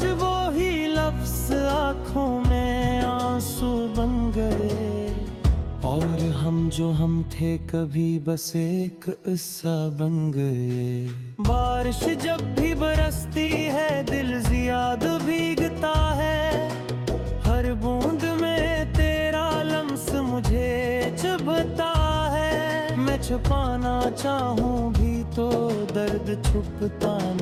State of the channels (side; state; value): both; identical; correlation 1.00